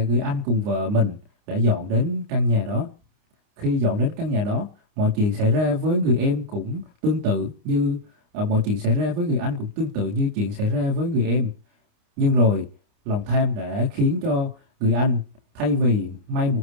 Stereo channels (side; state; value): left; late; 29 ms